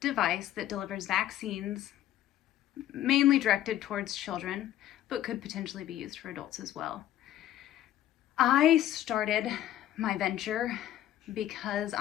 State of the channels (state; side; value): quieter; right; 12.7 dB